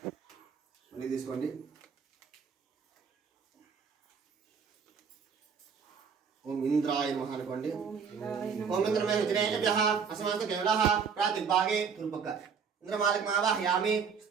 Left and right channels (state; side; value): quieter; left; 6.3 dB